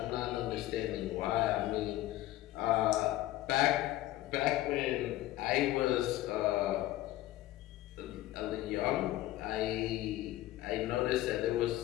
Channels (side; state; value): right; quieter; 15.6 dB